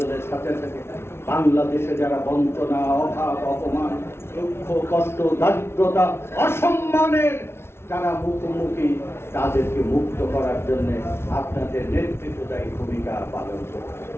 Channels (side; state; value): right; late; 0.12 ms